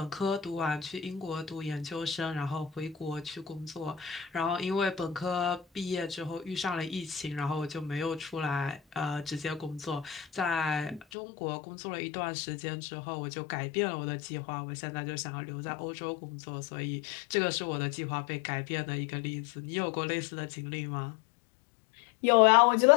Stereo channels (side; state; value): right; drops out; at 11.1 s